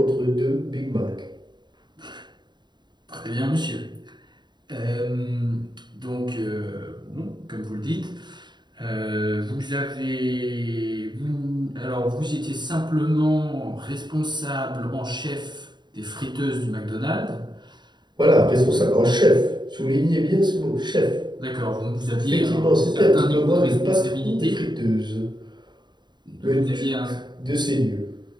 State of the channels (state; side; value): late; left; 0.21 ms